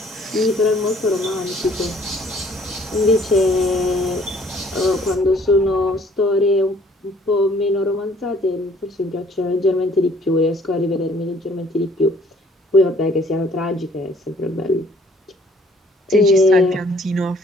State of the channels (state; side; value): normal; both; correlation 0.59